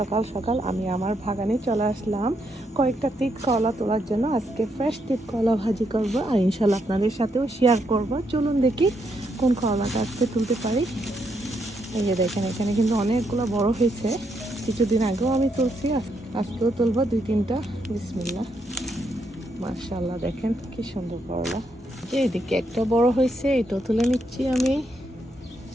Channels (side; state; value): both; normal; correlation 0.78